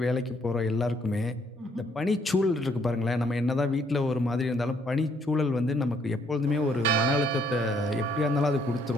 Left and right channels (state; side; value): normal; both; correlation 0.67